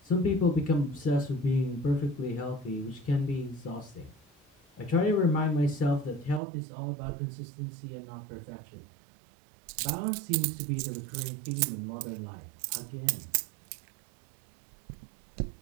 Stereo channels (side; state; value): left; drops out; at 6.4 s